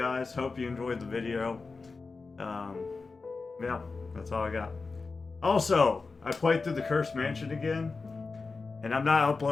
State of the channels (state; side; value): quieter; right; 4.2 dB